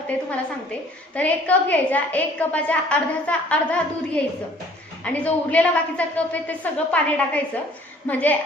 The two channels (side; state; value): both; normal; correlation 0.55